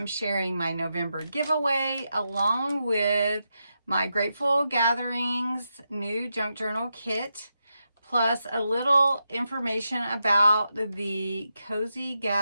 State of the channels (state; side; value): inverted; both; correlation -0.86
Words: sharing my November giveaway along with my Grateful Gatherings new junk journal kit, plus a little information about the Cozy